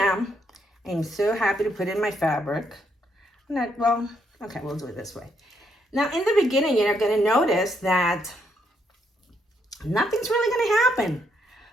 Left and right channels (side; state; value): both; normal; correlation 0.75